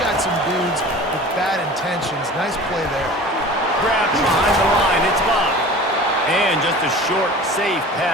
got some dudes with bad intentions. Nice play there. Grab behind the line. It's Love. And just a short, safe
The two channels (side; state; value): both; normal; correlation 0.40